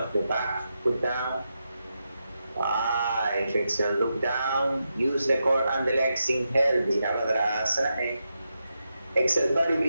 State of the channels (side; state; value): both; inverted; correlation -0.87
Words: the back foot down. 5, exhale, look down. Use the core and the legs. Inhale, Virabhadrasana. Exhale,